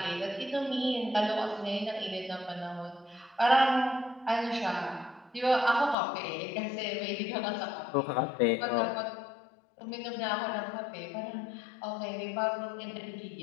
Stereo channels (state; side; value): drops out; right; at 6.0 s